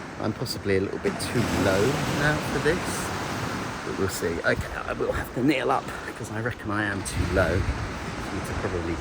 I'm possibly a little bit too low now for this, but we'll see. Okay, I will have to kneel up because I reckon I am too low for you to probably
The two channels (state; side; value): identical; both; correlation 1.00